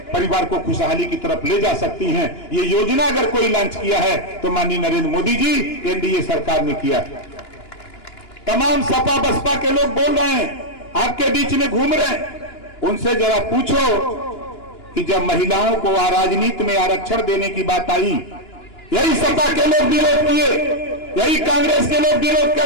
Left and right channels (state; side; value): late; right; 2.9 ms